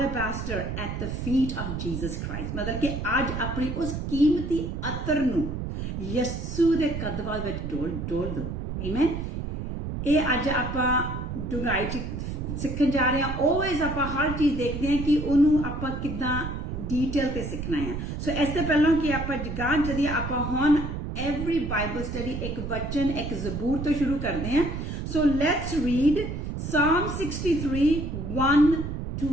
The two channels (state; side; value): noise; right; rumble, 5 dB below the sound